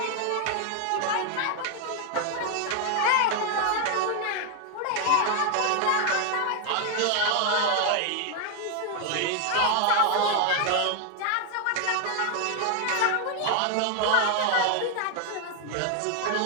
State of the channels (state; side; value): different; both; correlation 0.00